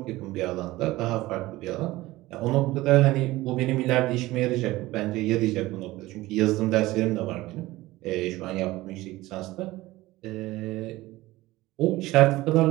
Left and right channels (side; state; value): left; quieter; 18.3 dB